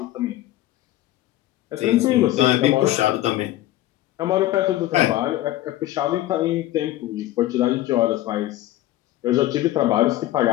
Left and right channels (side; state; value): right; quieter; 15.2 dB